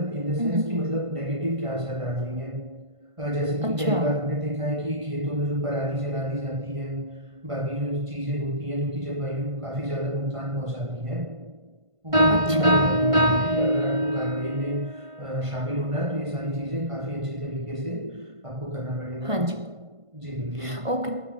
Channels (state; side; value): late; left; 1.5 ms